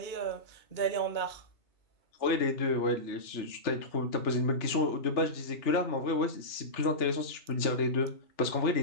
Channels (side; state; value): right; late; 3.3 ms